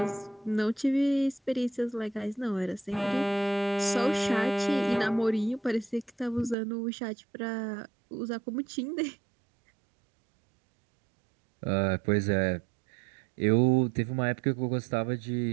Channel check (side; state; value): left; drops out; at 6.6 s